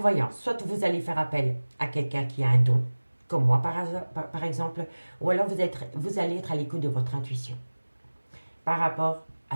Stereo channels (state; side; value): inverted; both; correlation -1.00